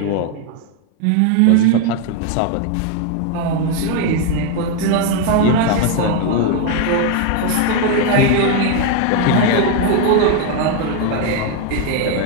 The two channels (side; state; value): both; different; correlation 0.01